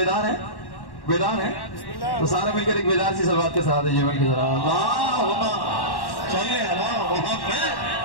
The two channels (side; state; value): right; late; 1.1 ms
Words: हैं, बेदार हैं, तो सारे मिलकर एक बेदार सी सलवात के साथ ये मिलकर जरा अल्लाहुम्मा सल्ली अला मुहम्मद।